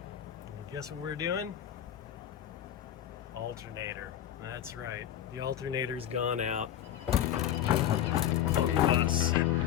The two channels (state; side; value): quieter; right; 10.8 dB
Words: And guess what we're doing? Alternator. That's right. The alternator's gone out on the bus.